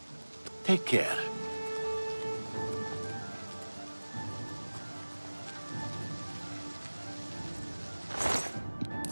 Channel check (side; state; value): both; inverted; correlation -1.00